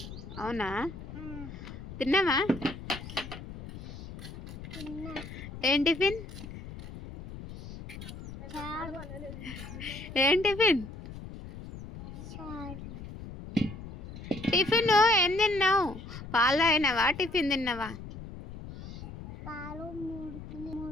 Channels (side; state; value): left; noise; rumble, 12 dB below the sound